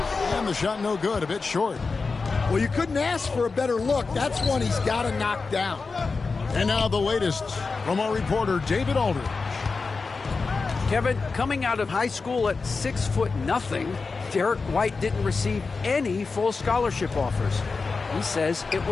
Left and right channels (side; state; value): right; quieter; 4.3 dB